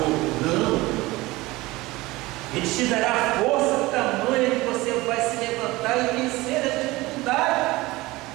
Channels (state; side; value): quieter; left; 20.3 dB